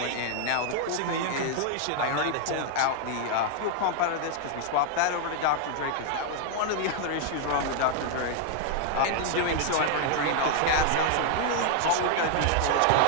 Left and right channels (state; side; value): different; both; correlation 0.00